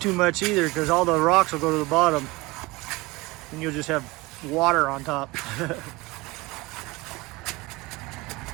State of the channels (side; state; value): left; quieter; 22.6 dB